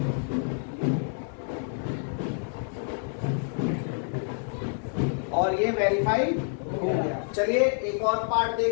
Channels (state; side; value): silent; right; 59 dB below the other